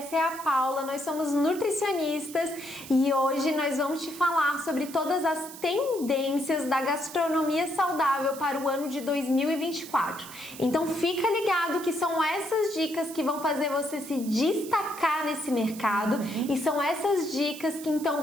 é a Paula, nós somos nutricionistas e hoje nós vamos te falar sobre todas as tendências da gastronomia saudável para o ano de 2024. Então fica ligado que são essas dicas que vão fazer você se destacar nesse mercado e são essas dicas que então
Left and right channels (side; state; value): right; noise; hiss, 15 dB below the sound